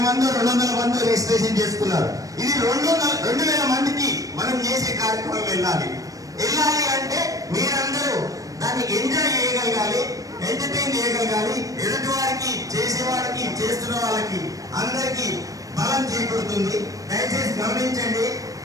మంది 200 మంది రిజిస్ట్రేషన్ చేసుకున్నారు. ఇది 2000 మందికి మనం చేసే కార్యక్రమం వెళ్ళాలి అంటే మీరందరూ దాన్ని ఎంజాయ్ చేయగలగాలి, ఎంటర్టైన్ చేయగలగాలి. ఎదుటి వారికి, చేసేవాడికి, చేస్తున్న వాళ్ళకి అందరికీ బలం చేకూరుతుంది. దయచేసి గమనించండి.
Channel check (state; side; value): late; left; 0.16 ms